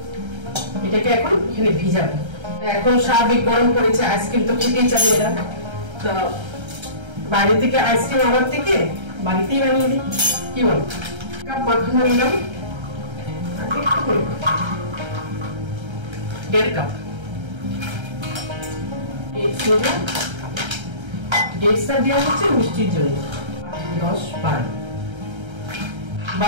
এটাকে এখন এখানে ভিজাবো। এখন স্বাভাবিক গরম পড়েছে, আইসক্রিম তো খেতেই চাই এরা, তো বাইরে থেকে আইসক্রিম আনার থেকে বাড়িতেই বানিয়ে দিই, কি বল? কাপ মাখানো নিলাম, 1.5 কাপ ডেটসটা দেওয়া হচ্ছে মিষ্টির জন্য, 10-12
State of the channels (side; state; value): left; late; 1.3 ms